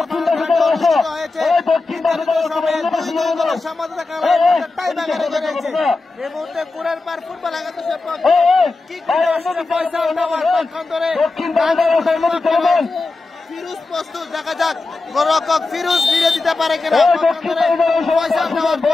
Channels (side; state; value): right; quieter; 3.6 dB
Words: হয়েছে। এই মুহূর্তে কুড়ের পার ফুটবল একাদশের ফিরোজ প্রস্তুত, দেখা যাক গোলরক্ষক ফিরোজ ফিরে দিতে পারে কিনা, পয়সা